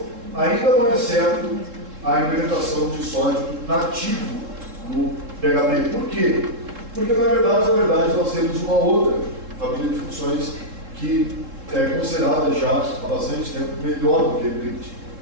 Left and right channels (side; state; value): left; late; 3.7 ms